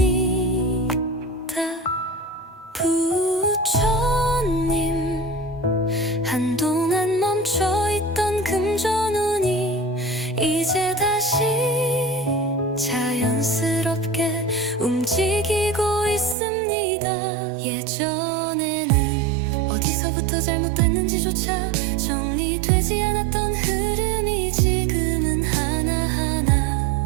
부처님, 한동안 멈춰있던 금전운이 이제 다시 자연스럽게 움직이고 있습니다. 예전에는 어디서부터 잘못됐는지조차 정리되지 않았던 흐름이 지금은 하나하나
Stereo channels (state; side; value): drops out; left; at 16.4 s